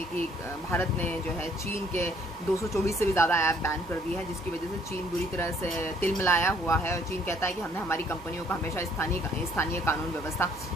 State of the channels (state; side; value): normal; both; correlation 0.62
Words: कि भारत ने जो है चीन के 224 से भी ज़्यादा ऐप बैन कर दिए हैं, जिसकी वजह से चीन बुरी तरह से तिलमिलाया हुआ है। और चीन कहता है कि हमने हमारी कंपनियों को हमेशा स्थानीय कानून व्यवस्था